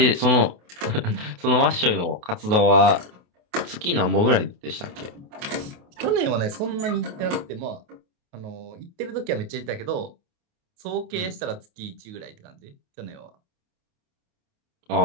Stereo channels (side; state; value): left; late; 28 ms